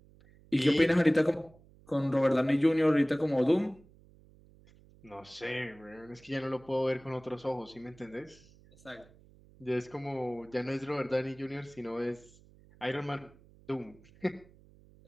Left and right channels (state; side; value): noise; right; hum, 26 dB below the sound